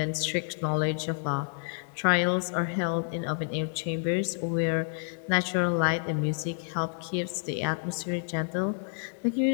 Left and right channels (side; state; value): right; silent; digital silence